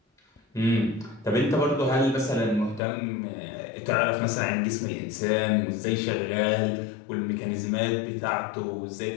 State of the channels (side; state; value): right; drops out; at 2.8 s